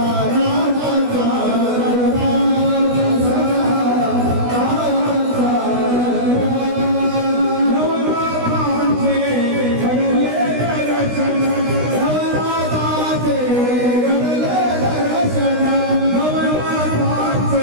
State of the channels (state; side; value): late; left; 16 ms